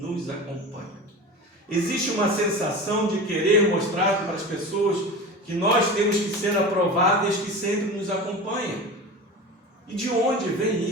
acompanha. Existe uma sensação de querer mostrar para as pessoas que nós temos que ser aprováveis que sempre nos acompanha. E de onde vem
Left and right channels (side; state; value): both; normal; correlation 0.31